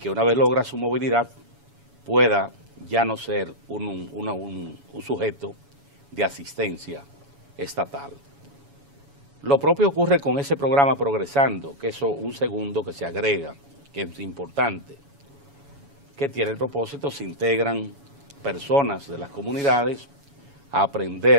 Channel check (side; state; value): left; late; 7.1 ms